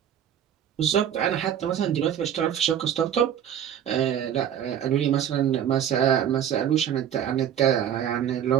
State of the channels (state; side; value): quieter; left; 9.6 dB